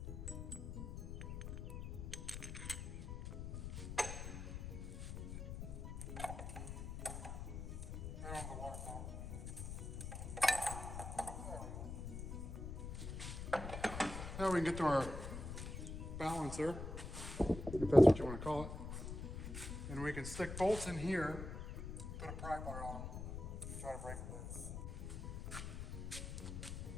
Now we can get to our balancer, if that's what you want to call it. And we can stick bolts in here, put a pry bar on, and try to break it loose.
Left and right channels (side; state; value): left; noise; rumble, 6 dB below the sound